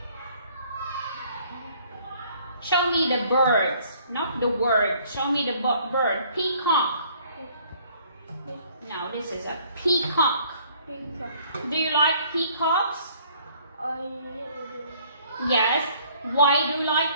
Show me the birds, not the word. Show me the bird. Peacock. No, this is a peacock. Peacock. Do you like peacocks? I do. Yes. Why do you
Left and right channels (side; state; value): both; inverted; correlation -0.59